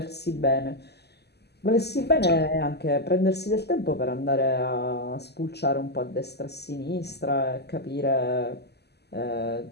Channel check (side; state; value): right; late; 0.48 ms